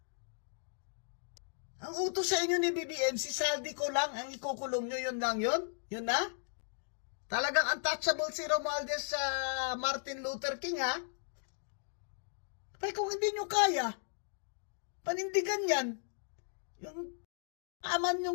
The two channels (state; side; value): silent; right; digital silence